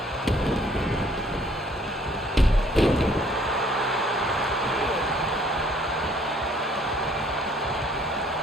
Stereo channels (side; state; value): both; normal; correlation 0.60